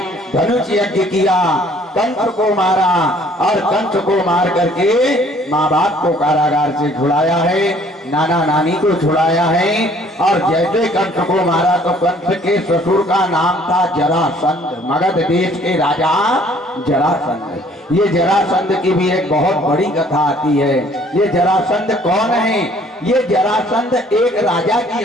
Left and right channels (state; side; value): normal; both; correlation 0.57